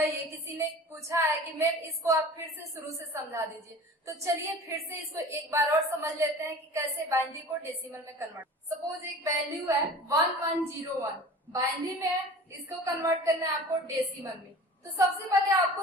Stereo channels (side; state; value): both; normal; correlation 0.40